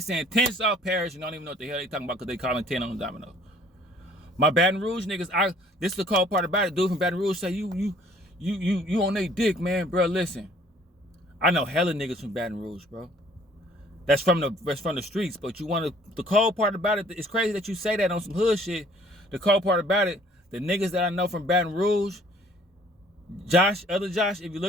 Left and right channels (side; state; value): both; normal; correlation 0.57